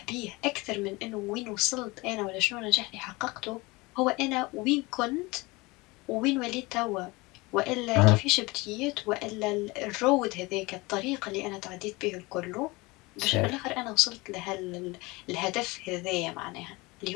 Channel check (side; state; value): right; quieter; 23.6 dB